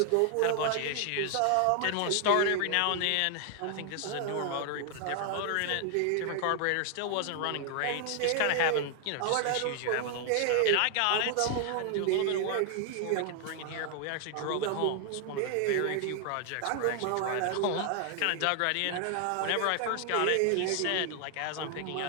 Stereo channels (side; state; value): both; different; correlation 0.00